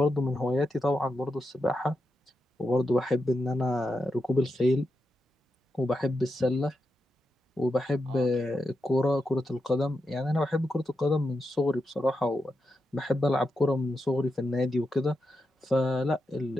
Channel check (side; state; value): both; normal; correlation 0.87